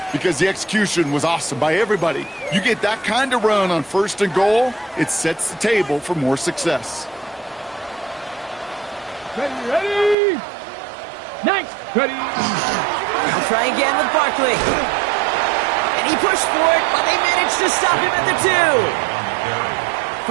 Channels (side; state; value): left; drops out; at 10.2 s